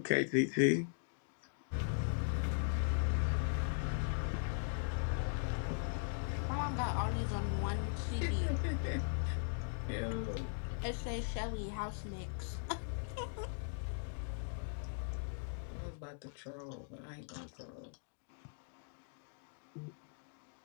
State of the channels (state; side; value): silent; right; digital silence